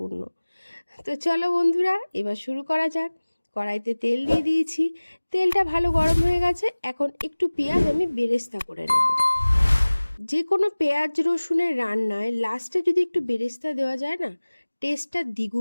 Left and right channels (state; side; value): inverted; both; correlation -1.00